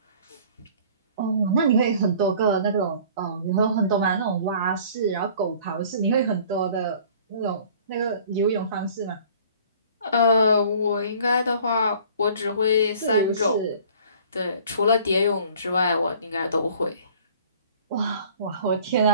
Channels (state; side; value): inverted; both; correlation -0.51